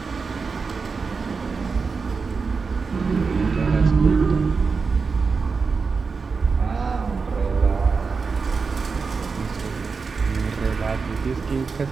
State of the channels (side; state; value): left; quieter; 4.9 dB